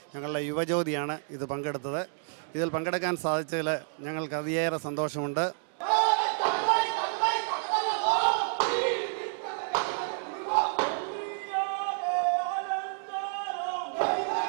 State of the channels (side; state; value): left; silent; 58 dB below the other